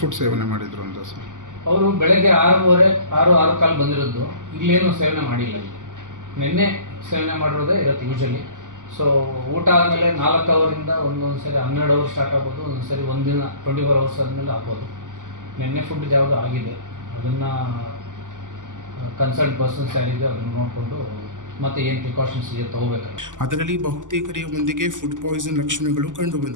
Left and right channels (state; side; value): late; left; 0.87 ms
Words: ಸೇವನೆ ಮಾಡಿದ್ರು ಅಂತ ಸರ್? ಅವರು ಬೆಳಗ್ಗೆ 6:15 ಬಂದಿರೋದು. ಇಲ್ಲೇನು ಸೇವನೆ ಮಾಡಿಲ್ಲ. ಇಲ್ಲಿ ನಿನ್ನೆ ಸೇವನೆ ಮಾಡಿರೋದೇ ಇರುತ್ತೆ ಯೂಶಲಿ. ಸೊ ಊಟ ಆದಮೇಲೆ 4 ಅವರಿಂದ ಒಂದೊಂದು ಸರಿ 12 ಅವರ್ ಸ್ಟಾರ್ಟ್ ಆಗ್ಬೋದು, ಒಂದೊಂದು ಸರಿ ಒಂದಿನ 24 ಅವರ್ಸ್ ಆದಮೇಲೆ ಆಗ್ಬೋದು. ನಿನ್ನೆ ಫುಡ್ ಯಾವುದು ಆಗಿದೆ ಅದನ್ನು ಕನ್ಸಲ್ಟ್ ಪರ್ಸನ್ಸ್ ಯಾರಿದೆ ಅದನ್ನು ನೋಡಿಕೊಂಡು ಮತ್ತೆ ಏನು ಪ್ರಿಕಾಷನ್ಸ್ ಇದೆ ತಗೋಬೇಕಾಗುತ್ತೆ. ಅದರಲ್ಲಿ ಬಹುತೇಕರೆಯ ಮಂದಿಗೆ ಫುಡ್ ಪಾಯ್ಸನ್ ಲಕ್ಷಣಗಳು